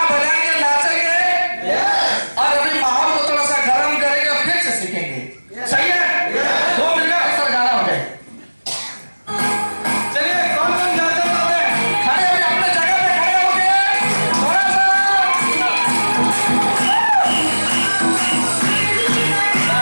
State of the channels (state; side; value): inverted; both; correlation -1.00